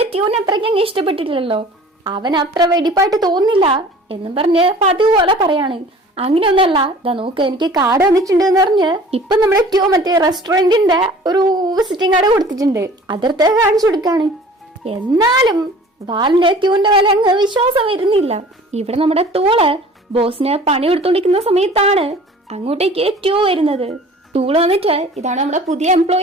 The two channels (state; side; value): normal; both; correlation 0.47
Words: ട്യൂനെ അത്രയ്ക്ക് അങ്ങ് ഇഷ്ടപ്പെട്ടിട്ടില്ലല്ലോ, അവൻ അത്ര വെടിപ്പായിട്ട് തോന്നുന്നില്ല എന്നും പറഞ്ഞ് പതിവ് പോലെ പറയാണ്. അങ്ങനെയൊന്നല്ല, ഇതാ നോക്ക് എനിക്ക് കാർഡ് വന്നിട്ടുണ്ട് എന്ന് പറഞ്ഞ് ഇപ്പൊ നമ്മുടെ ട്യൂ മറ്റേ റെസ്റ്റോറന്റിന്റെ ഒരു വിസിറ്റിംഗ് കാർഡ് കൊടുത്തിട്ടുണ്ട്, അതിർത്ത് കാണിച്ചു കൊടുക്കാണ്. എന്നാലും വാലിന്റെ ട്യൂന്റെ വില അങ്ങ് വിശ്വാസം വരുന്നില്ല. ഇവിടെ നമ്മുടെ തൂള് ബോസിന് പണി കൊടുത്തോണ്ടിരിക്കുന്ന സമയത്താണ് അങ്ങോട്ടേക്ക് ട്യൂ വരുന്നത്. തൂള് വന്നിട്ട് ഇതാണ് നമ്മുടെ പുതിയ